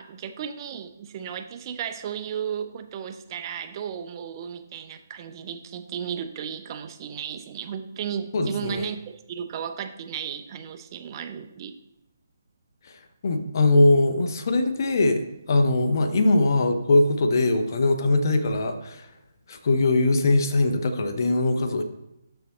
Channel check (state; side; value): inverted; both; correlation -0.85